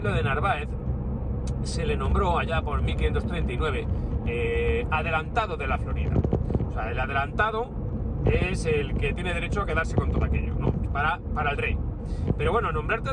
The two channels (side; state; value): both; identical; correlation 1.00